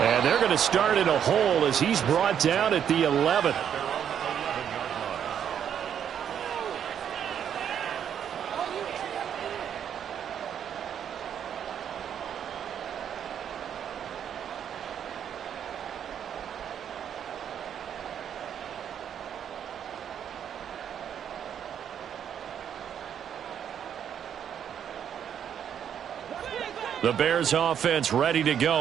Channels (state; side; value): quieter; left; 8.9 dB